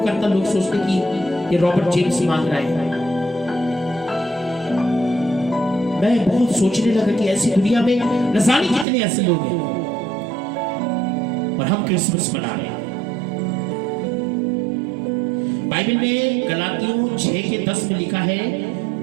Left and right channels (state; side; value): drops out; left; at 8.8 s